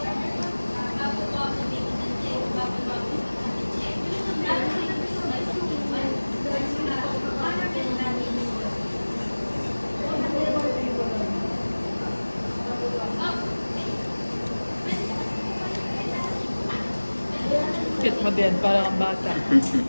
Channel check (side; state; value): both; inverted; correlation -1.00